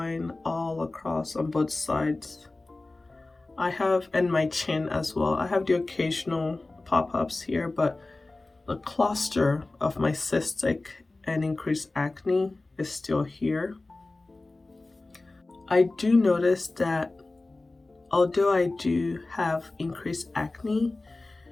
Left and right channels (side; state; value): right; quieter; 3.1 dB